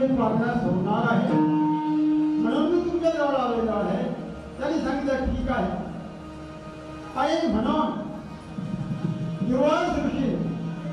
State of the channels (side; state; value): both; identical; correlation 1.00